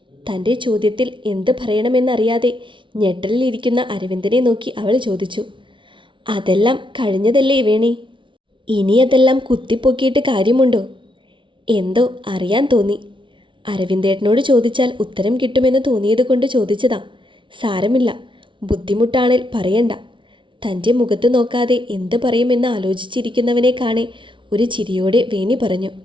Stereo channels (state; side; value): late; left; 0.24 ms